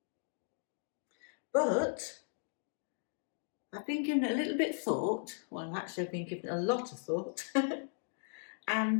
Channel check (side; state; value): right; silent; digital silence